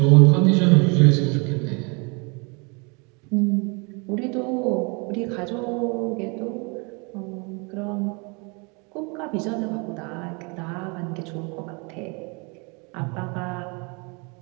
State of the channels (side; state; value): left; quieter; 31.6 dB